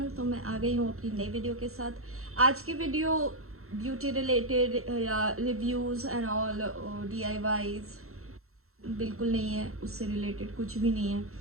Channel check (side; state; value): left; late; 0.63 ms